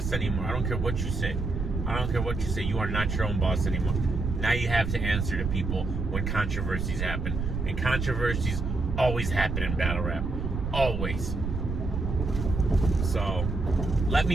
anymore. I don't care what you say. I don't care what you say. You are not your own boss anymore. Now you have to answer to people when controversies happen. And controversies always happen in battle rap. Always. So, let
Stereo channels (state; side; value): noise; right; rumble, 3 dB below the sound